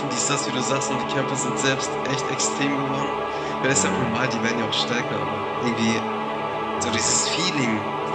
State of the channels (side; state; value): both; identical; correlation 1.00